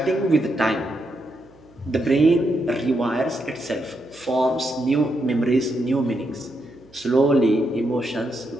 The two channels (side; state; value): right; noise; hum, 28 dB below the sound